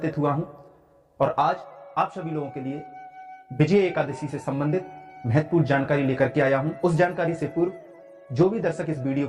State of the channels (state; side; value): identical; both; correlation 1.00